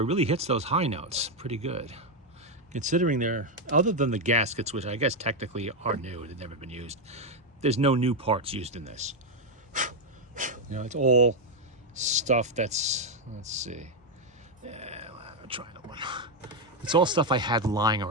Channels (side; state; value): both; normal; correlation 0.03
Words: really hits those high notes pretty good. Considering they're, other than the gaskets, which I guess technically are new, they've never been used, there's no new parts used in this. You know, it's all stuff that's, let's see. Yeah, I'll try another one. It's all stuff I had lying